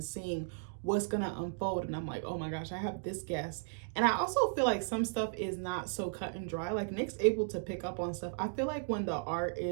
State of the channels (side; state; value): left; silent; digital silence